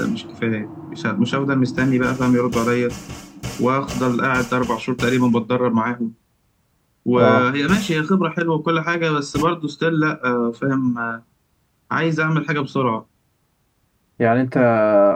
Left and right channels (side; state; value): both; identical; correlation 1.00